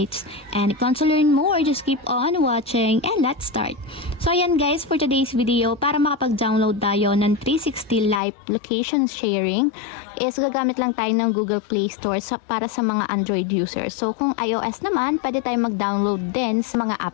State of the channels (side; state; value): right; drops out; at 8.2 s